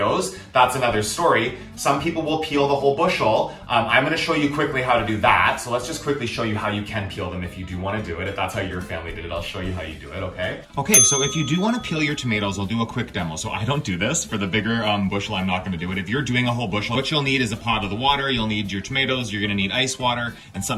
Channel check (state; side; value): identical; both; correlation 1.00